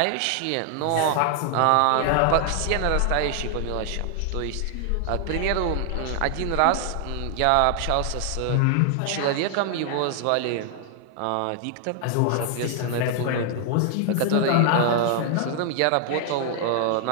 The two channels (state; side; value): different; both; correlation 0.00